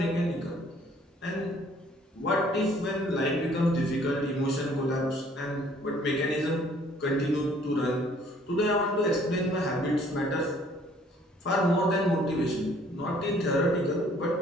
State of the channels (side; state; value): both; normal; correlation 0.59